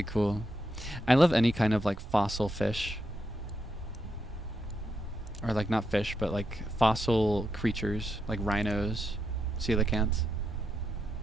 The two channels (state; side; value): normal; both; correlation 0.82